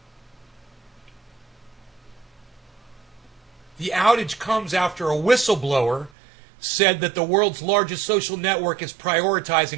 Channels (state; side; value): drops out; left; at 6.1 s